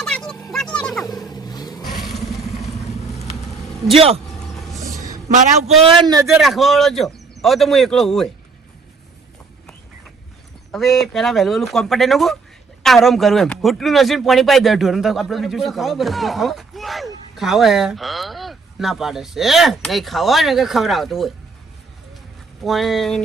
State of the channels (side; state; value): left; quieter; 4.5 dB